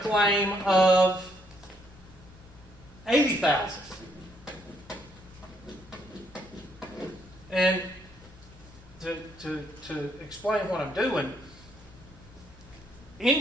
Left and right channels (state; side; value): normal; both; correlation 0.72